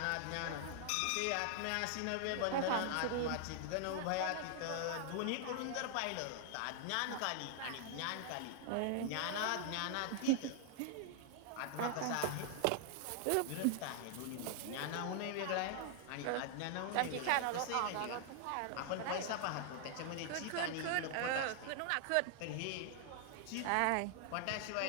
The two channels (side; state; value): both; different; correlation 0.00